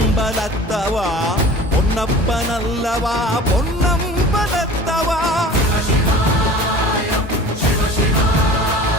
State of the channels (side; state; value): both; normal; correlation 0.41